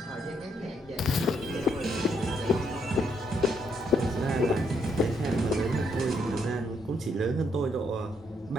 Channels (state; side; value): normal; both; correlation 0.74